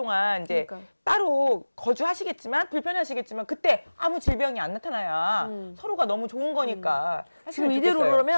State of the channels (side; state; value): both; inverted; correlation -1.00